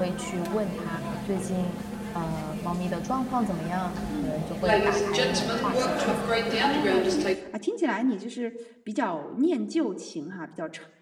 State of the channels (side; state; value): both; identical; correlation 1.00